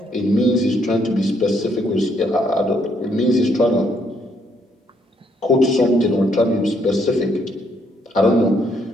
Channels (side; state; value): both; normal; correlation 0.71